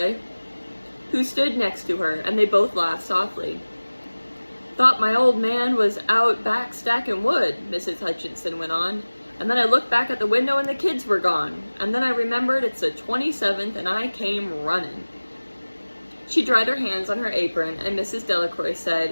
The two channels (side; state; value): both; inverted; correlation -1.00